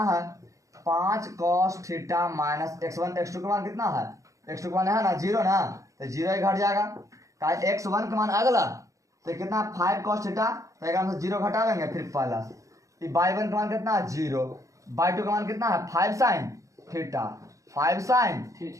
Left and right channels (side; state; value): left; late; 0.16 ms